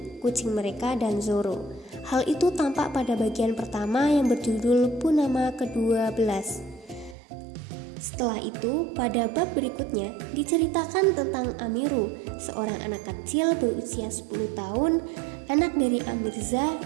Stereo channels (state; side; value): drops out; left; at 7.2 s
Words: kucing mereka, dan Zoro. Hal itu tampak pada bagian pertama yang berjudul Punama ke-12. Setelah itu, pada bab berikutnya diceritakan tentang Amiru, seorang anak kecil berusia 10 tahun, anak dari Amirza